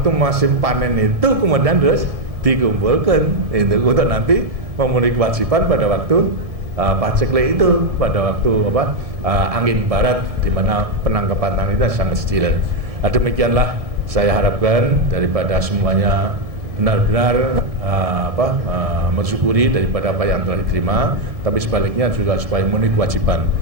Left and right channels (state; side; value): late; left; 1.7 ms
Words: musim panen itu kemudian terus dikumpulkan itu untuk nanti memenuhi kewajiban pada waktu paceklik itu, pada waktu angin barat di mana penangkapan tangan itu sangat kecil. Nah, demikianlah saya harapkan daripada semuanya benar-benar mensyukuri daripada apa yang telah diterima, tapi sebaliknya juga supaya memenuhi kewajiban.